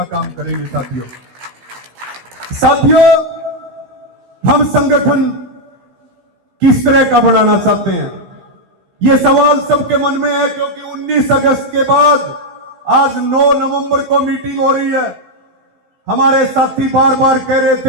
काम करेंगे साथियों। साथियों, हम संगठन किस तरह का बनाना चाहते हैं, यह सवाल सबके मन में है, क्योंकि 19 अगस्त के बाद आज 9 नवंबर को मीटिंग हो रही है। हमारे साथी बार बार कह रहे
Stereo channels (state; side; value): late; left; 16 ms